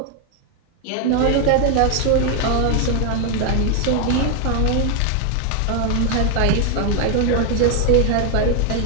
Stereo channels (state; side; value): different; both; correlation 0.01